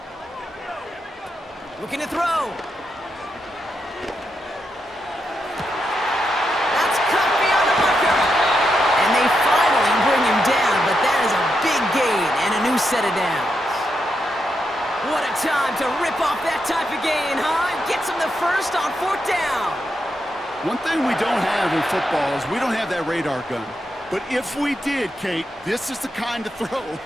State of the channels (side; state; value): both; normal; correlation 0.84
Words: Looking to throw. That's cut beyond the marker. And they finally bring him down, but that is a big gain and a new set of downs. What a time to rip off that type of gain, huh? Gets him the first on 4th down. One thing we don't have in football is we don't have that radar gun. But if we did, Kate, this is the kind of throw,